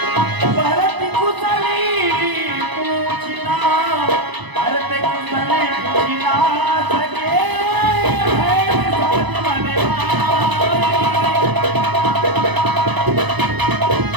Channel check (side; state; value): left; late; 1.0 ms